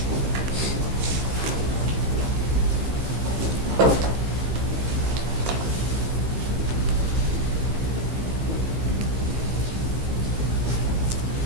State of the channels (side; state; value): left; late; 15 ms